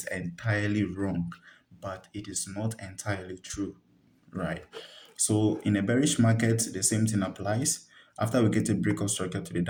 entirely wrong, but it is not entirely true, right? So in a bearish market, the same thing applies. After we get a break of structure to the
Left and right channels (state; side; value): identical; both; correlation 1.00